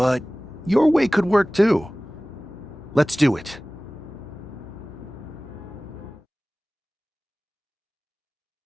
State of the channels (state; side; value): normal; both; correlation 0.98